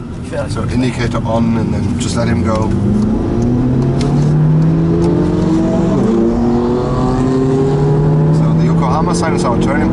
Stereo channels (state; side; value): identical; both; correlation 1.00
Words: So indicator on and then just let him go. So the Yokohama sign is our turning